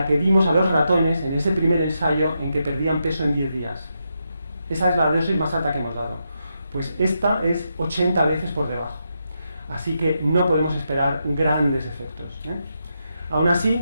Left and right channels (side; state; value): both; inverted; correlation -0.84